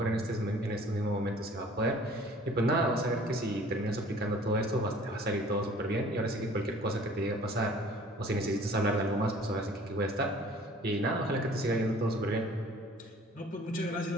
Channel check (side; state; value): both; normal; correlation 0.51